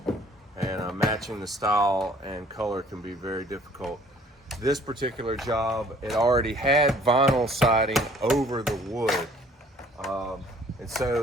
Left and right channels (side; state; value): both; normal; correlation 0.56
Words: and matching the style and color can be very difficult. This particular job, it already had vinyl siding over the wood, and